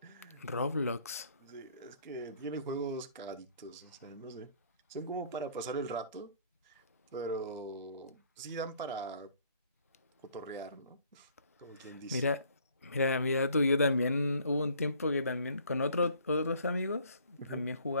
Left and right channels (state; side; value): inverted; both; correlation -0.60